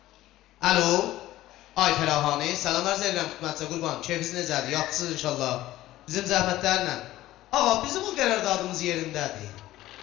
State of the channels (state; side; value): quieter; right; 15.4 dB